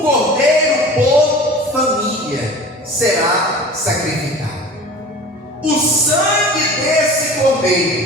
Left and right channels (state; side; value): normal; both; correlation 0.39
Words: cordeiro por família será sacrificado. O sangue desse